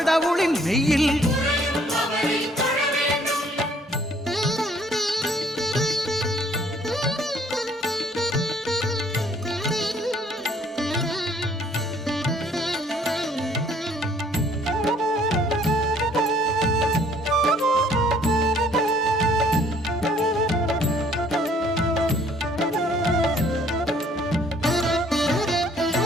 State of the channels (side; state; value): both; normal; correlation 0.60